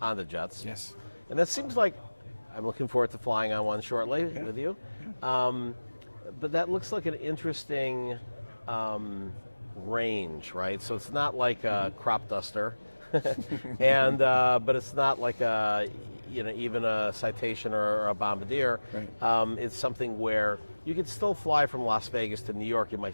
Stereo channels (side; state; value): both; inverted; correlation -1.00